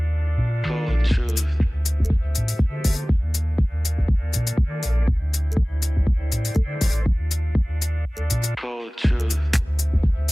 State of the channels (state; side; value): normal; both; correlation 0.98